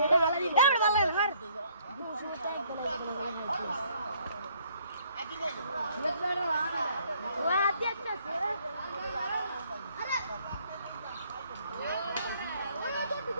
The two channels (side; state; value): both; inverted; correlation -0.64